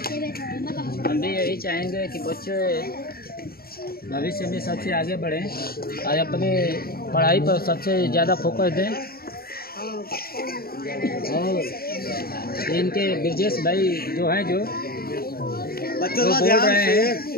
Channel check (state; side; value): late; right; 0.44 ms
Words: हम भी यही चाहेंगे कि बच्चे भविष्य में सबसे आगे बढ़ें और अपने पढ़ाई पर सबसे ज़्यादा फोकस दें। और इनके ब्रिजेश भाई जो हैं, जो बोल रहे